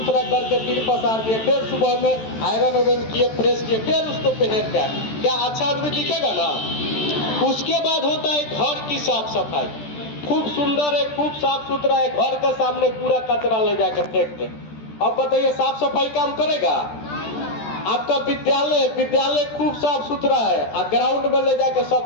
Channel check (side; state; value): right; late; 14 ms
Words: करके फिर पसार दिए, फिर सुबह में आयरन वायरन किए, फ्रेश किए, फिर उसको पहन के क्या अच्छा आदमी दिखेगा ना। उसके बाद होता है घर की साफ सफाई, खूब सुंदर है, खूब साफ सुथरा है, घर के सामने पूरा कचरा ले जाकर फेंक दे। अब बताइए साफ सफाई काम करेगा? आपका विद्यालय खूब साफ सुथरा है और ग्राउंड में ले जाकर